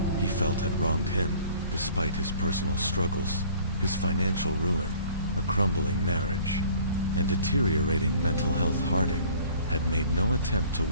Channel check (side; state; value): both; inverted; correlation -0.52